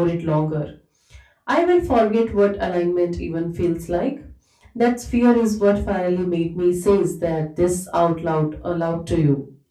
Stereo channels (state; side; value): identical; both; correlation 1.00